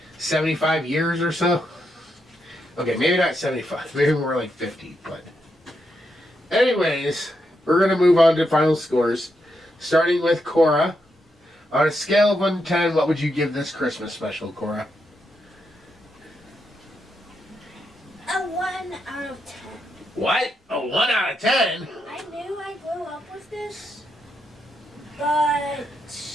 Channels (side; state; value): both; normal; correlation 0.82